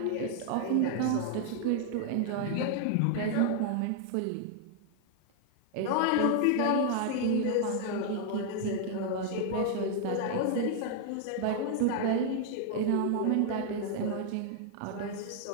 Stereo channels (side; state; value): both; different; correlation 0.00